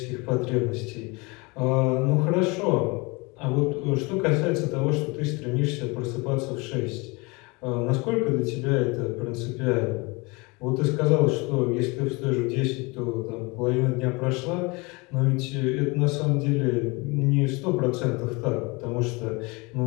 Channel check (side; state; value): right; quieter; 26.9 dB